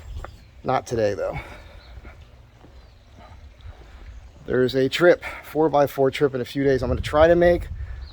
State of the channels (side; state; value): both; identical; correlation 1.00